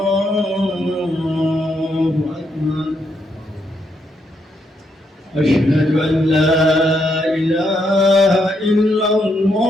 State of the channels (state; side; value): normal; both; correlation 0.78